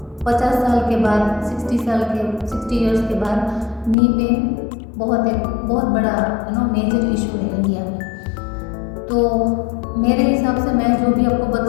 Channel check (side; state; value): right; drops out; at 4.0 s